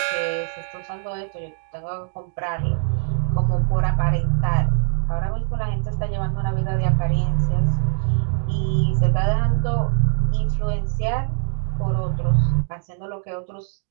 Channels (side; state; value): left; silent; digital silence